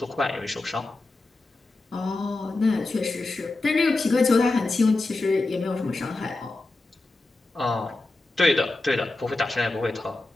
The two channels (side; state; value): right; quieter; 3.1 dB